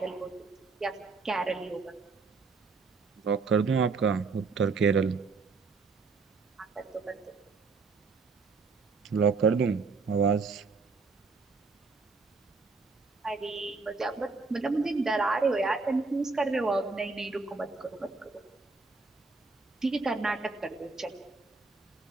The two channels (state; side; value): quieter; left; 4.3 dB